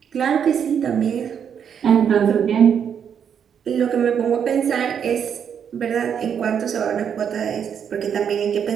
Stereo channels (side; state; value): left; quieter; 7.9 dB